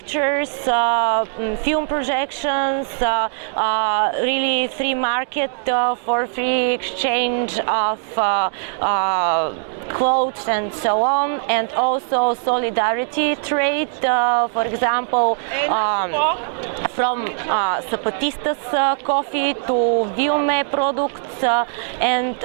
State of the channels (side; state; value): left; silent; digital silence